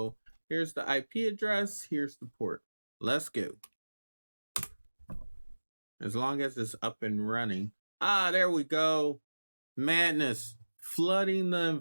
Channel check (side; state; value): both; inverted; correlation -1.00